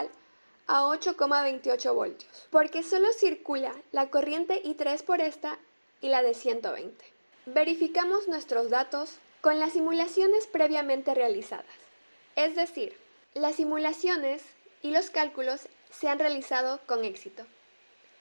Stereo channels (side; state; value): both; inverted; correlation -1.00